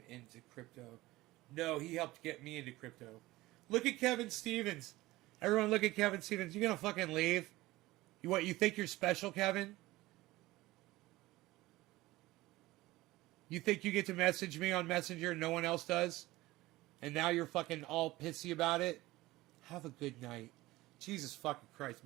into crypto? No, he helped get me into crypto. Look at Kevin Stevens. Everyone look at Kevin Stevens. You gonna fucking leave? You think you're special, Kevin? You think you get to message me on Messenger and no one else does? And now you're fucking all pissy about it? Have a good night. Jesus fucking Christ.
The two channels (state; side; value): quieter; left; 18.6 dB